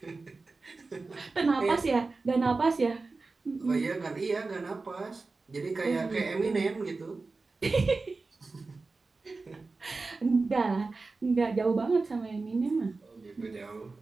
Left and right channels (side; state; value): left; quieter; 3.8 dB